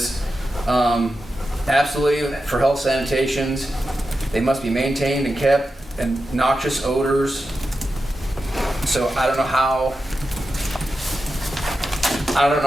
absolutely for health sanitations, they must be maintained and kept, and noxious odors. So I don't know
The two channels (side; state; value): both; normal; correlation 0.90